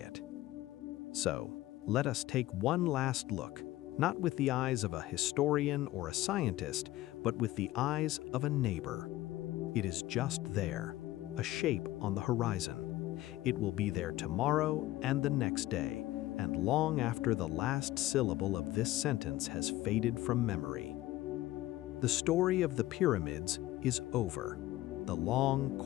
So, let us take one last look, not with the eyes of a historian or a scientist, but with the eyes of a neighbor. It is just there, a shape on the horizon. It will be there tomorrow and the next day, and long after the last syllable of this sentence has faded from memory. The story of the pyramids is over. The long,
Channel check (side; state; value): right; quieter; 16.2 dB